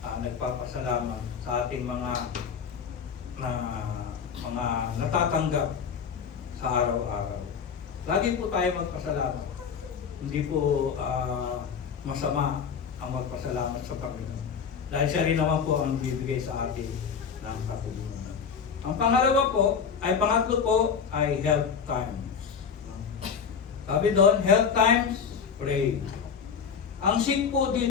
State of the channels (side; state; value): right; quieter; 6.6 dB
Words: nagpapasalamat sa ating mga natatanggap sa araw-araw. Lagi po tayo magpasalamat. Hindi po masama ang magpasalamat sa Panginoon. Dahil siya rin naman po ang bibigay sa atin ng katulungan. Ang pangatlo po ay health times. Sabi doon, health times, pray. Ang sick po